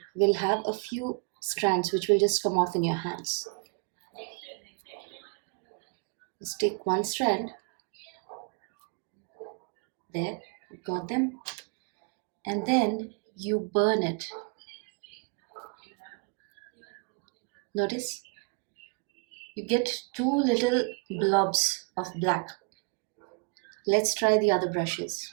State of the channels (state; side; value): quieter; left; 34.6 dB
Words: will have a few strands which will just come off in your hands. Let's take one strand. There, I've got them. And then you burn it. Notice you get two little blobs of black. Let's try the other brushes.